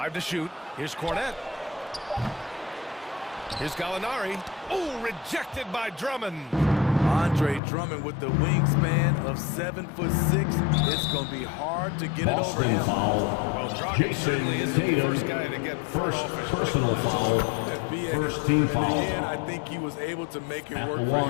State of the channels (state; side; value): drops out; right; at 7.6 s